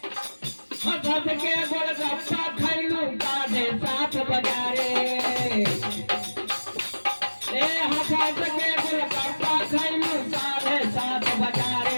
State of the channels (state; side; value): inverted; both; correlation -1.00